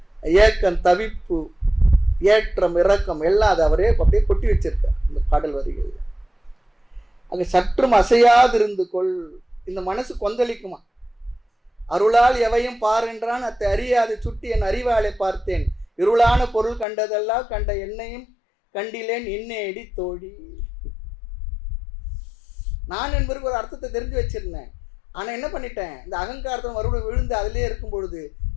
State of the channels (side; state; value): right; drops out; at 16.9 s